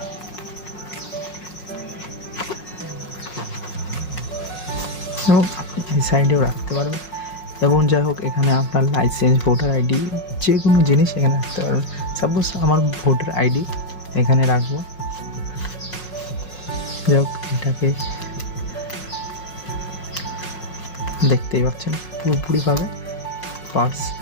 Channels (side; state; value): right; late; 5.5 ms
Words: এবং আপনি এই সাইডেও রাখতে পারবেন। এবং যাই হোক, এখানে আপনার লাইসেন্স, ভোটার আইডি, যে কোনো জিনিস এখানে রাখতে পারবেন। সাপোজ আমার ভোটার আইডি এখানে রাখবো। যাই হোক, এটাকে দেখতেই পাচ্ছেন পুরোপুরিভাবে পার্স